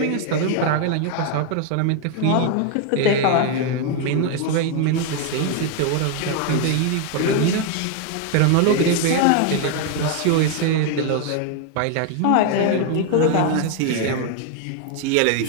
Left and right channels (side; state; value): both; different; correlation 0.01